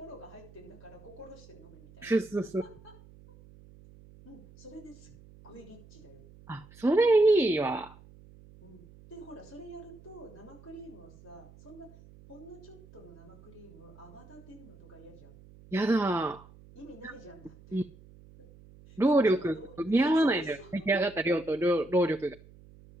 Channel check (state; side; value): noise; right; hum, 22 dB below the sound